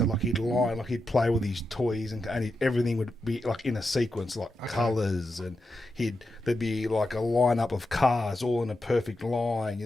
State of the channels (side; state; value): both; normal; correlation 0.87